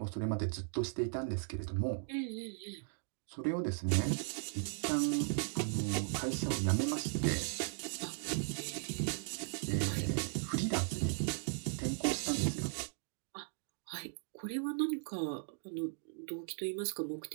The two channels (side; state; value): left; silent; digital silence